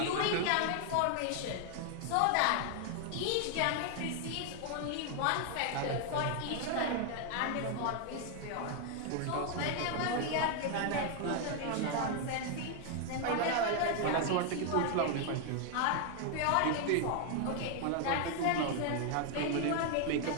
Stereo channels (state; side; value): different; both; correlation 0.00